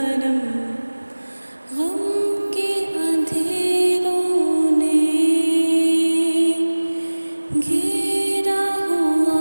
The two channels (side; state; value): both; inverted; correlation -1.00